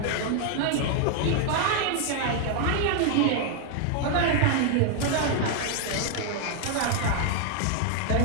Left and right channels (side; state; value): both; different; correlation 0.00